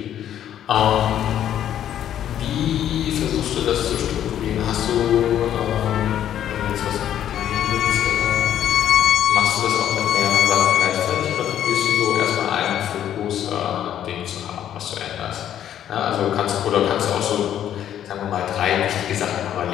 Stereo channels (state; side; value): quieter; right; 10.6 dB